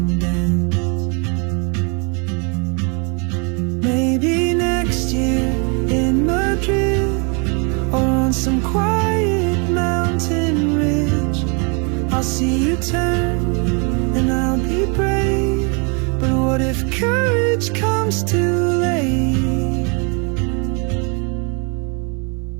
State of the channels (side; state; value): left; quieter; 34.6 dB